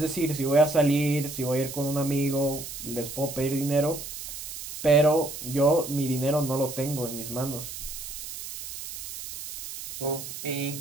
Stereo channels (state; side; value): noise; right; hiss, 9 dB below the sound